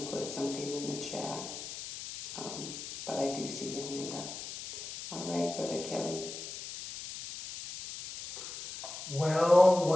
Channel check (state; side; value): noise; left; hiss, 9 dB below the sound